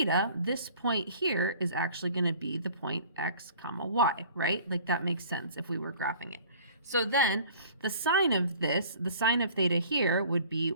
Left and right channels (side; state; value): both; inverted; correlation -0.49